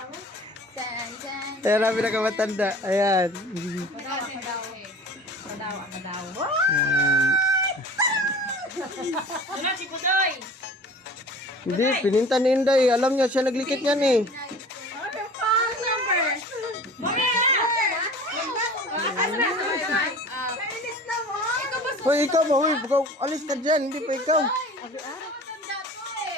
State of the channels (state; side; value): normal; both; correlation 0.42